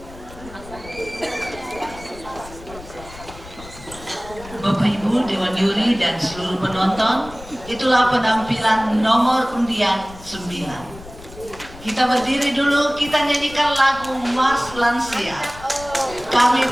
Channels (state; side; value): noise; left; rumble, 17 dB below the sound